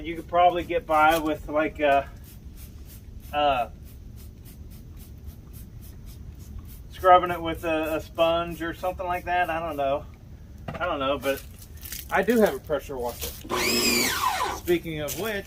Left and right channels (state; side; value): identical; both; correlation 1.00